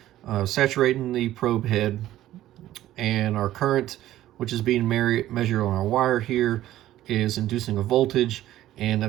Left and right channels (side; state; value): left; quieter; 13.8 dB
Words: saturating the probe head, and our current, which is being measured on our wire here, is inducing a voltage, and